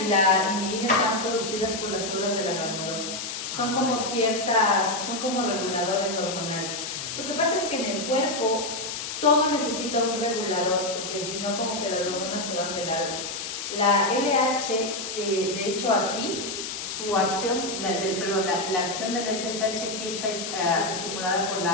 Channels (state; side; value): noise; left; hiss, 6 dB below the sound